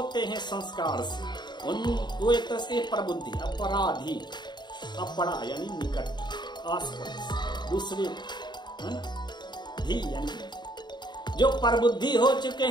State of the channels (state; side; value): late; right; 0.21 ms